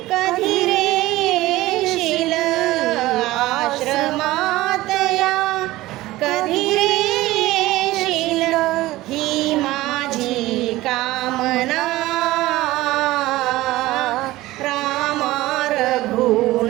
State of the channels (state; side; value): quieter; left; 17.7 dB